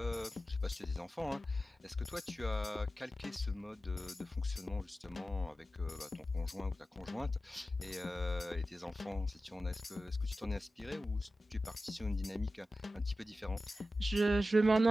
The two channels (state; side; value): normal; both; correlation 0.93